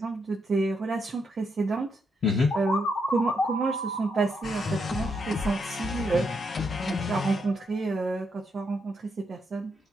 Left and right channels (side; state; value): both; normal; correlation 0.79